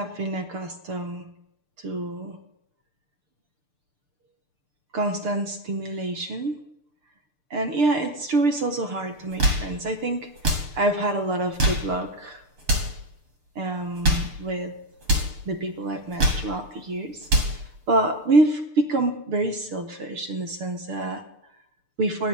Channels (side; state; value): left; late; 6.7 ms